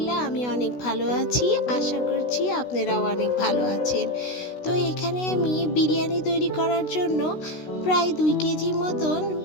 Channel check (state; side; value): late; right; 16 ms